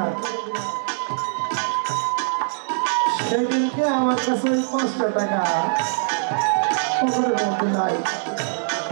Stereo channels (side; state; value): left; silent; 64 dB below the other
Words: সেদিনকে আমার কাছে 5টা টাকা পকেটের মধ্যে নাই।